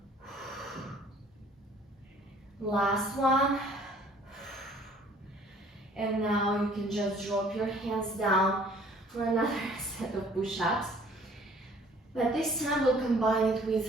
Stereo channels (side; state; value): both; normal; correlation 0.55